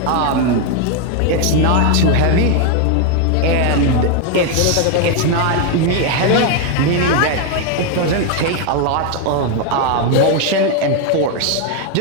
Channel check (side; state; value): both; different; correlation 0.01